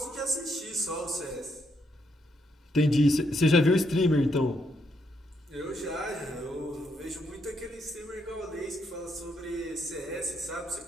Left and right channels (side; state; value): both; normal; correlation 0.76